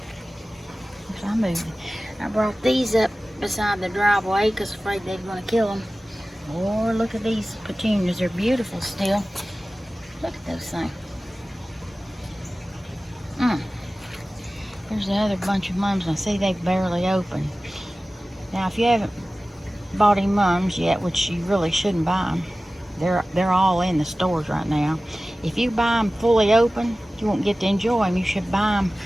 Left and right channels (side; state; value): both; normal; correlation 0.97